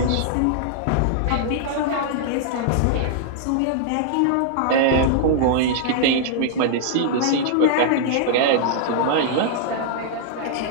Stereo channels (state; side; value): different; both; correlation -0.01